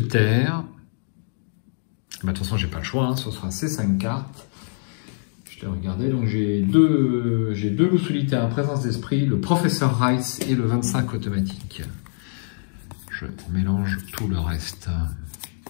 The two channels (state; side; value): silent; right; digital silence